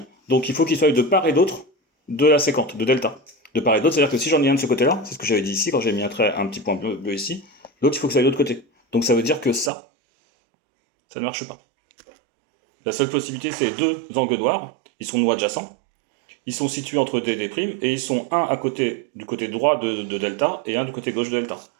donc il faut qu'ils soient de part et d'autre de la séquente, de delta. De part et d'autre, c'est-à-dire que si j'en ai un de ce côté-là, c'est ce que j'avais dit ici quand j'ai mis un petit point bleu ici, l'autre il faut que ça aille de l'autre côté. Donc ça veut dire que ça ne marche pas. La seule possibilité, c'est deux angles noirs. Ils sont nous adjacents. Ils sont situés entre D et D', et ils sont un à côté du côté droit de delta et un du côté gauche de delta.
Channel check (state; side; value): drops out; left; at 9.7 s